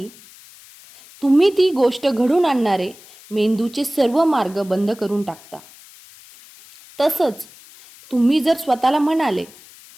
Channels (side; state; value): left; noise; hiss, 23 dB below the sound